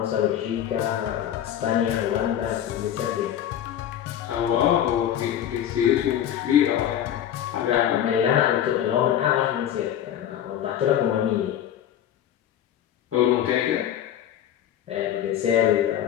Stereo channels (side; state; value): right; quieter; 10.6 dB